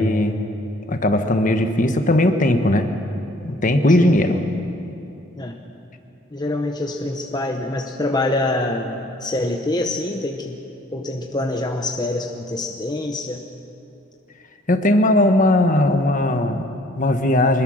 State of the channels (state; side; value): normal; both; correlation 0.58